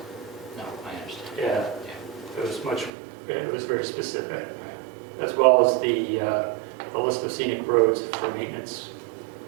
No, I understand. yeah, it was very specific, as well as the list of scenic roads for maintenance.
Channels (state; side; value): drops out; left; at 2.9 s